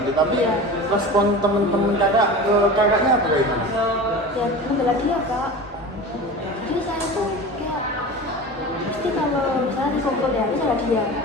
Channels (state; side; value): normal; both; correlation 0.33